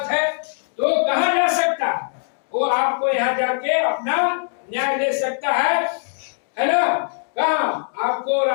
है, तो कहां जा सकता है, वो आपको यहाँ जाके अपना न्याय ले सकता है ना। कहां, आपको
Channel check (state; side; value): silent; right; digital silence